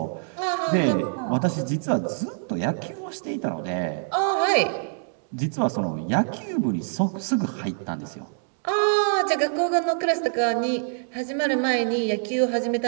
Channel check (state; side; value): silent; left; digital silence